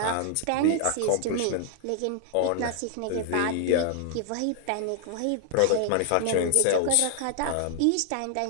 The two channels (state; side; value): different; both; correlation 0.00